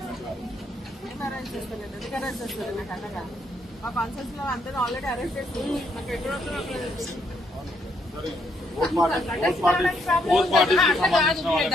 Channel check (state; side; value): normal; both; correlation 0.74